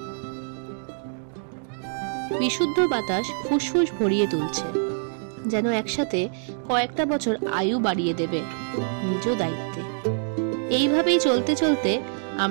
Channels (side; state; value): left; silent; digital silence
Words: বিশুদ্ধ বাতাস ফুসফুস ভরিয়ে তুলছে, যেন একসাথে কয়েকটা বছর আয়ু বাড়িয়ে দেবে নিজ দায়িত্বে। এইভাবেই চলতে চলতে